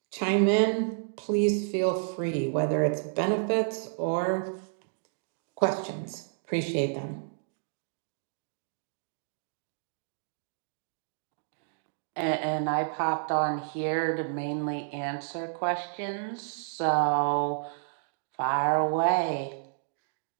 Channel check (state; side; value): silent; left; digital silence